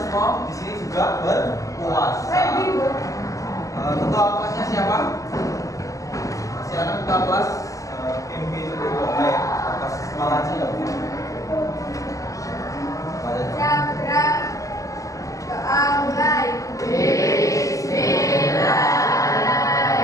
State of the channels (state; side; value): late; right; 0.16 ms